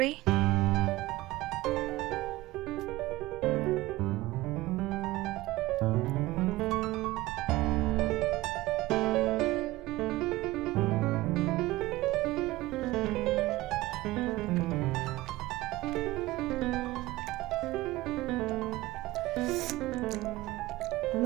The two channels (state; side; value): quieter; left; 18.5 dB